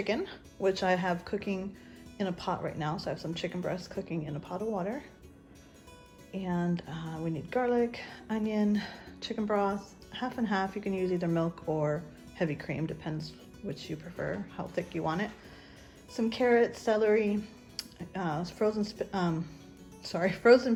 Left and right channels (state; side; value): identical; both; correlation 1.00